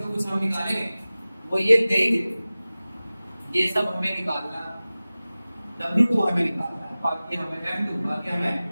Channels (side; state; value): both; inverted; correlation -0.97